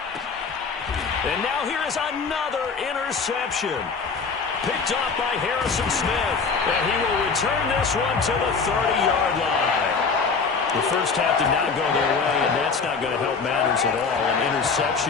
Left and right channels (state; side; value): quieter; right; 5.0 dB